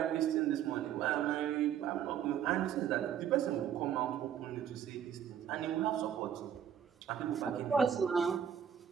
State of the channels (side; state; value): left; quieter; 9.1 dB